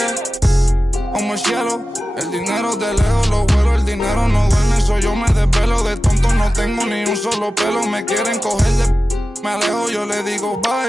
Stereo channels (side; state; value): both; normal; correlation 0.94